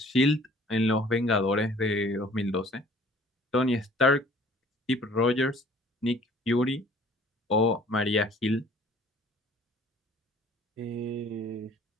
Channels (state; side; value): normal; both; correlation 0.54